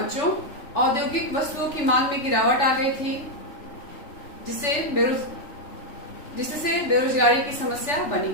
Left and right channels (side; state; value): right; late; 3.4 ms